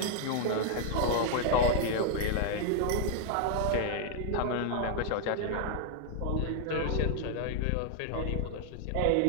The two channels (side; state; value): both; different; correlation 0.00